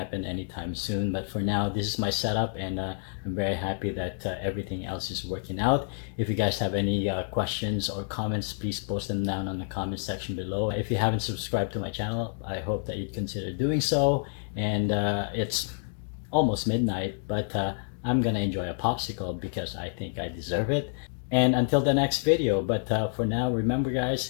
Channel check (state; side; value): silent; right; 59 dB below the other